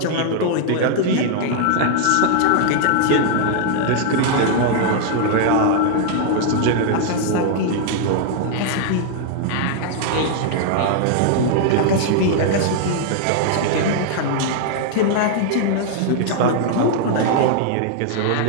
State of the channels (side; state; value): both; different; correlation 0.00